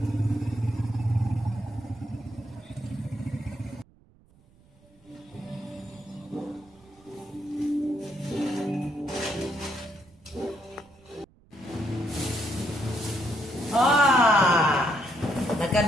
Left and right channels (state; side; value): noise; right; rumble, 29 dB below the sound